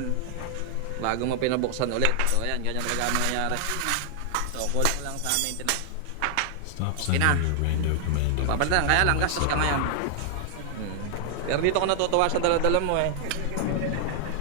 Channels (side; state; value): both; different; correlation 0.00